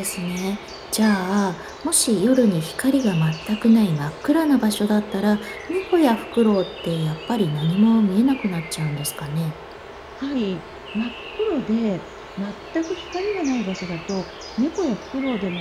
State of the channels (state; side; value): identical; both; correlation 1.00